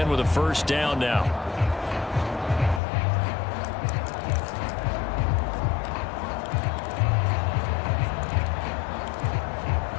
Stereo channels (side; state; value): right; drops out; at 2.8 s